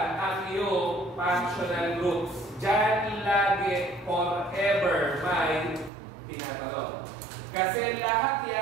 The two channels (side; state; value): left; drops out; at 5.9 s